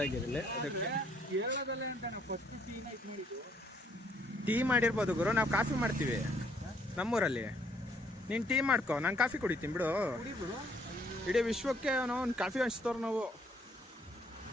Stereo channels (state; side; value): normal; both; correlation 0.66